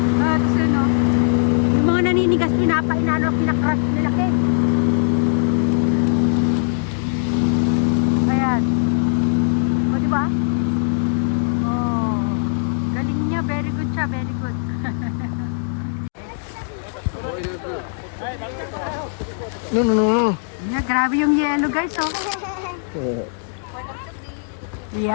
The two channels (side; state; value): right; silent; digital silence